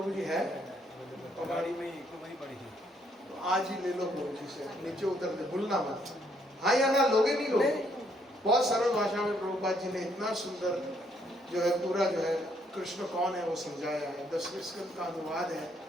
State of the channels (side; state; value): both; normal; correlation 0.70